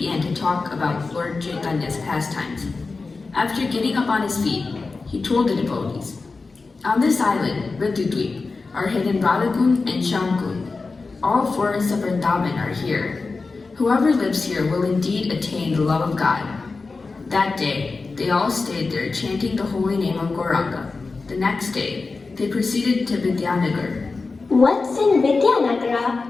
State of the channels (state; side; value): quieter; right; 4.0 dB